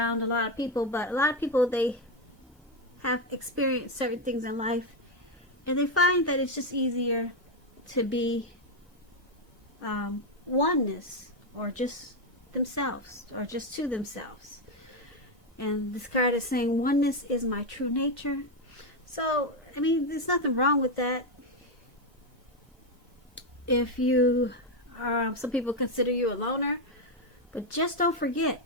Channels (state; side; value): normal; both; correlation 0.06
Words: a lot of people, but a lot of people, they have experienced certain things in life and they find that it's just easier to be oneness, or just themselves, or just to themselves. And this card is saying oneness is my true nature. So I mean, there's nothing wrong with that. If you are, some people consider you a loner, but just don't